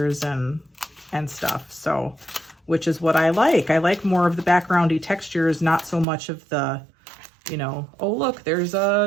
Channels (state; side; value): drops out; left; at 6.1 s